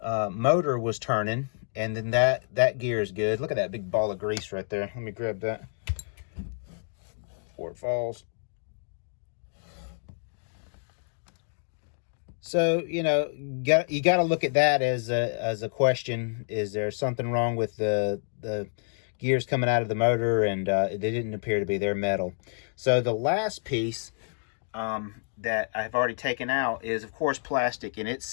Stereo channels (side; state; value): right; silent; digital silence